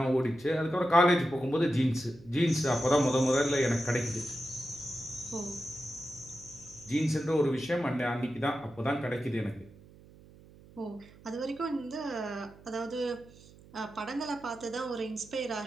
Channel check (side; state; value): right; noise; hum, 23 dB below the sound